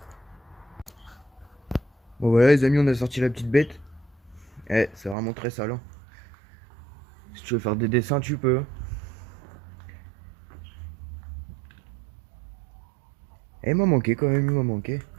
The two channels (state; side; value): drops out; left; at 5.2 s